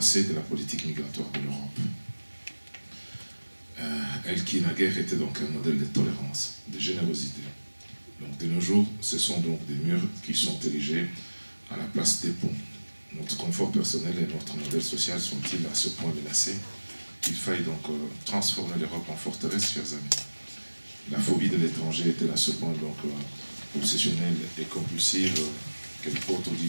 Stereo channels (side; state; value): both; inverted; correlation -1.00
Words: de la politique migratoire de l'Europe. Elle qui naguère était donc un modèle de tolérance, de générosité. Donc de nos jours, ce sont donc des murs qui sont érigés à la place des ponts. Notre confort personnel et notre modèle social sont-ils à ce point menacés qu'il faille donc transformer l'Europe en forteresse, chers amis. La phobie de l'étranger est-elle à ce point donc obsessionnelle et compulsive qu'elle porte aux